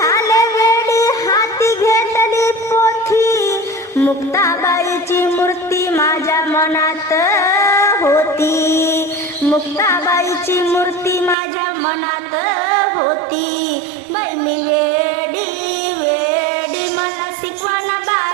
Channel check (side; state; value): left; drops out; at 11.4 s